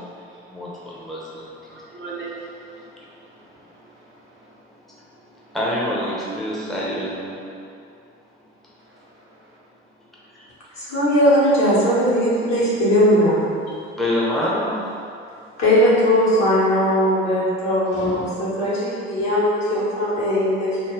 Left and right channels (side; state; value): both; normal; correlation 0.31